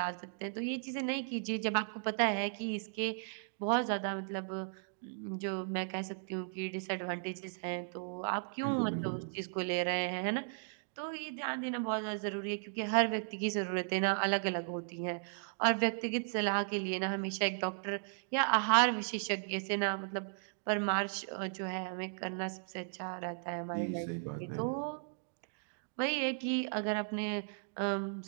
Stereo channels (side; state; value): left; silent; digital silence